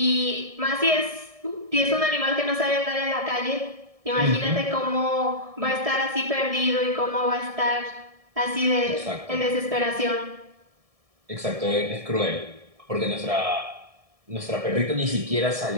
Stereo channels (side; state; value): left; late; 1.7 ms